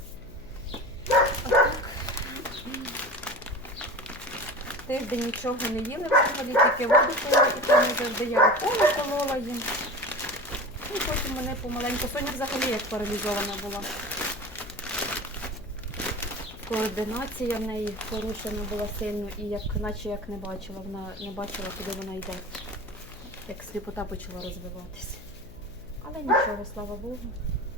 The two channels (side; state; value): left; noise; hum, 18 dB below the sound